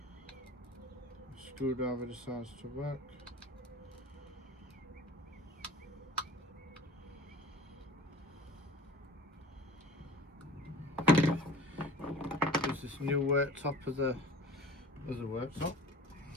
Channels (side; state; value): both; normal; correlation 0.42